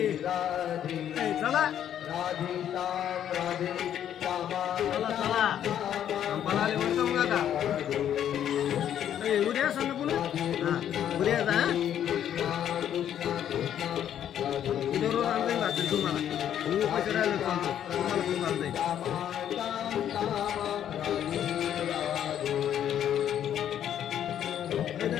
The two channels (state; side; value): quieter; right; 10.1 dB